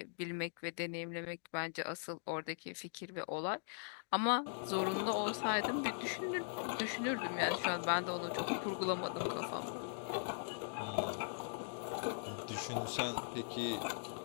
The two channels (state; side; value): silent; right; digital silence